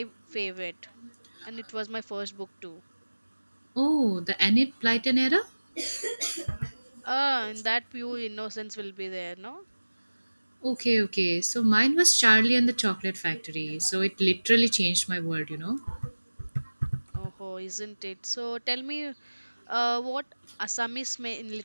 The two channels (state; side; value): inverted; both; correlation -1.00